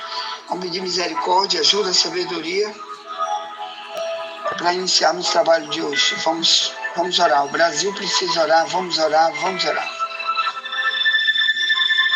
Vamos pedir misericórdia, ajuda, sabedoria, para iniciarmos o trabalho de hoje. Vamos orar. O Brasil precisa orar. Vamos orar.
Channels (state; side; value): identical; both; correlation 1.00